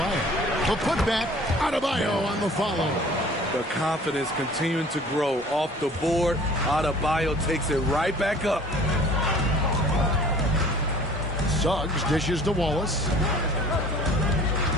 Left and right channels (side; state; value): both; normal; correlation 0.49